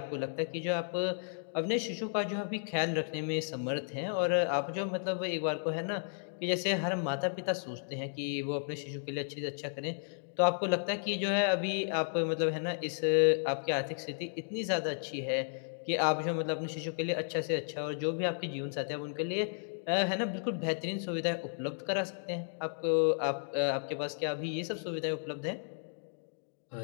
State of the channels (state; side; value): silent; right; digital silence